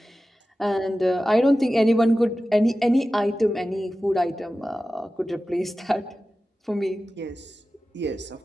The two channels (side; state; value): both; normal; correlation 0.95